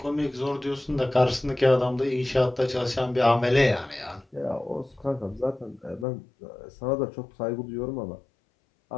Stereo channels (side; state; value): right; drops out; at 6.1 s